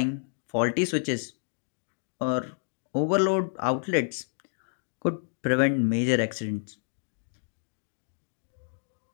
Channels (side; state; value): right; silent; digital silence